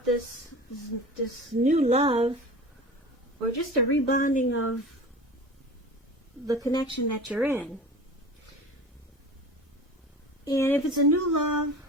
this new love, or just a rebonding of the connection that you're in. And if it's a new love,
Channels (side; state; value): both; normal; correlation 0.36